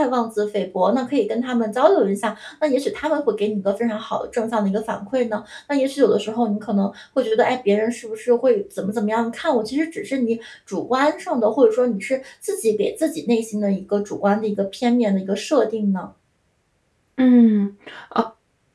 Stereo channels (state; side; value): identical; both; correlation 1.00